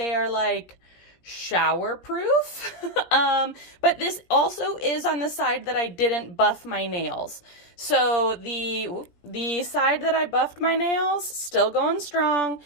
are shower proof. But this also is on the side that I didn't buff my nails. So the side that I buffed my nails, still going strong.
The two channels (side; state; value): right; late; 17 ms